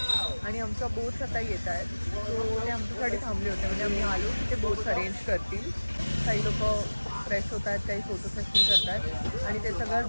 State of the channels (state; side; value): inverted; both; correlation -1.00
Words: आणि आमच्या बोट्स आता येत आहेत. सो ते आमच्यासाठी थांबले होते, म्हणजे आम्ही आलो की ते बोट्स अरेंज करतील. काही लोक फ्रेश होत आहेत, काही फोटो सेशन करत आहेत आणि ते सगळं